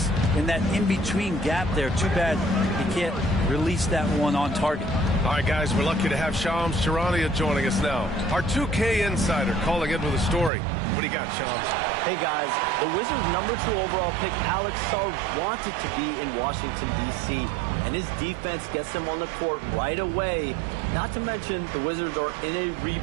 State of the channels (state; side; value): drops out; left; at 10.5 s